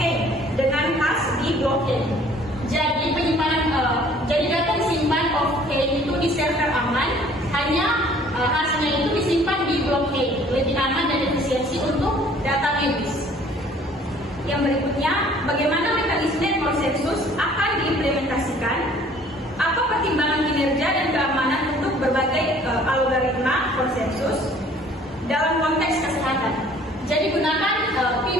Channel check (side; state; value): both; normal; correlation 0.55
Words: dengan khas di blockchain? Jadi jadi data disimpan off-chain itu di server aman, hanya hasilnya itu disimpan di blockchain, lebih aman dan efisiensi untuk data medis. Yang berikutnya, bagaimana mekanisme konsensus akan diimplementasikan? Apa pertimbangan kinerja dan keamanan untuk berbagai algoritma konsensus dalam konteks kesehatan? Jadi gunakan